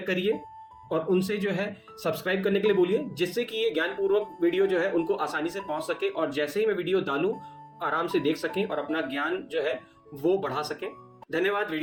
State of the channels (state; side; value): identical; both; correlation 1.00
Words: करिए और उनसे जो है सब्सक्राइब करने के लिए बोलिए जिससे कि ये ज्ञानपूर्वक वीडियो जो है उनको आसानी से पहुंच सके और जैसे ही मैं वीडियो डालूं आराम से देख सकें और अपना ज्ञान जो है वो बढ़ा सकें। धन्यवाद